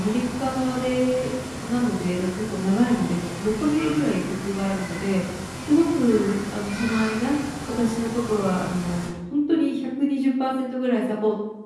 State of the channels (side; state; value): both; identical; correlation 1.00